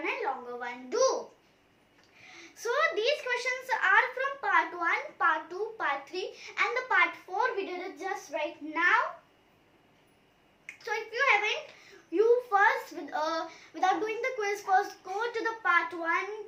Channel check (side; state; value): both; identical; correlation 1.00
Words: and longer one do? So, these questions are from part 1, part 2, part 3 and the part 4. We did it just right now. So, if you haven't, you first, without doing the quiz, first go to the part